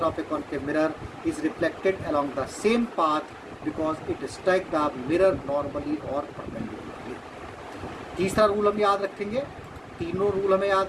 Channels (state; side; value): identical; both; correlation 1.00